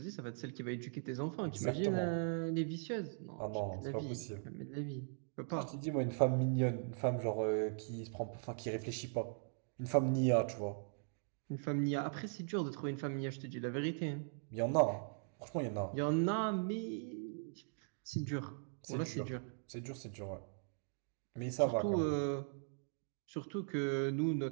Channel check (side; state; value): left; silent; digital silence